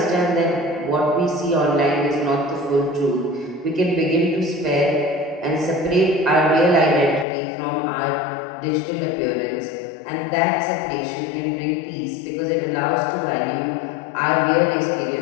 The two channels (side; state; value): right; drops out; at 7.2 s